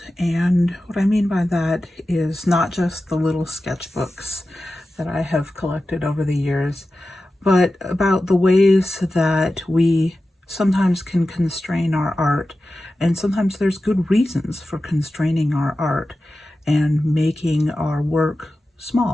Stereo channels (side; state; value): both; normal; correlation 0.94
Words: and what I mean by that is not just the little sketchbooks that I have collected over the years, but about the ways that we sometimes can constrain our art, and sometimes there's good reasons for constraining our art and making our work